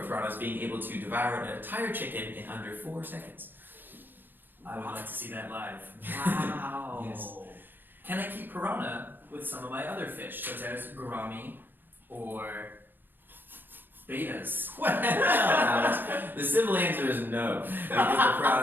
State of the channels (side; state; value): left; late; 0.094 ms